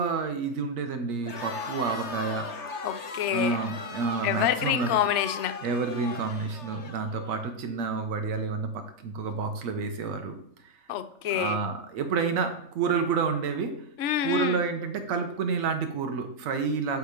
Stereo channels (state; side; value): late; left; 3.3 ms